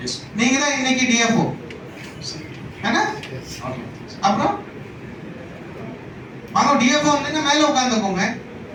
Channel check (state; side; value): identical; both; correlation 1.00